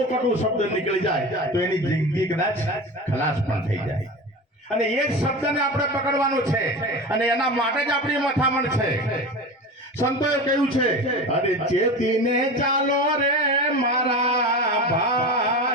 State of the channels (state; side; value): normal; both; correlation 0.29